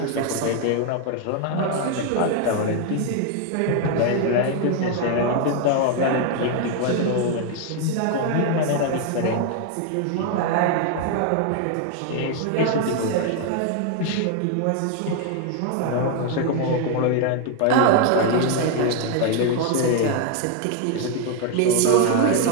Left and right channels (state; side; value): different; both; correlation 0.01